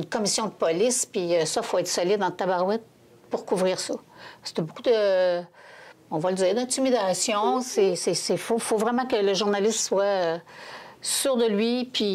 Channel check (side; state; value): both; identical; correlation 1.00